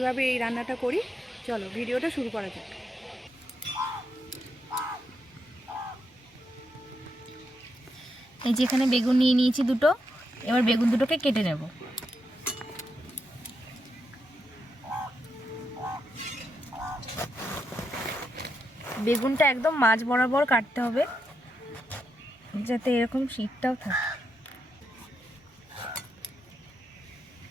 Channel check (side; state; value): both; normal; correlation 0.82